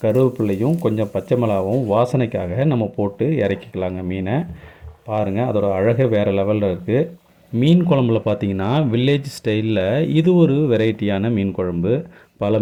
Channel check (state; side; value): identical; both; correlation 1.00